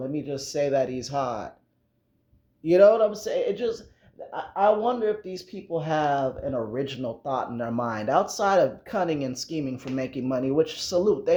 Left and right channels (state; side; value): identical; both; correlation 1.00